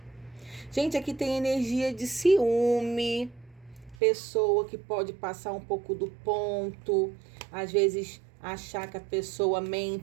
Gente, aqui tem energia de ciúme, pessoa que pode passar um pouco do ponto, às vezes achar que a pessoa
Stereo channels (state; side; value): drops out; left; at 4.0 s